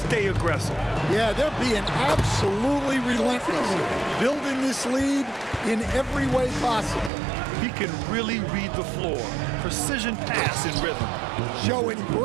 stay aggressive. Yeah, they're being absolutely relentless, building this lead in every way possible. He can really read the floor. Precision pass in rhythm. Showing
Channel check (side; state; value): left; drops out; at 7.1 s